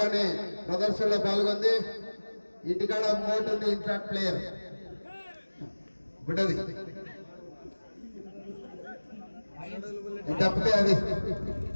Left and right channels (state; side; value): inverted; both; correlation -1.00